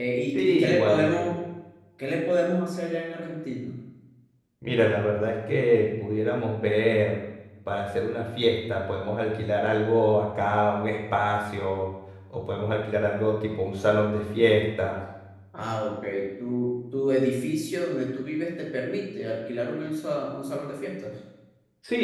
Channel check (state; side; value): identical; both; correlation 1.00